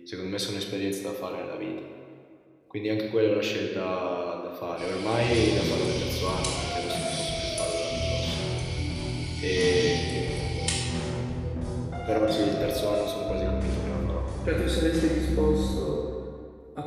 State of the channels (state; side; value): identical; both; correlation 1.00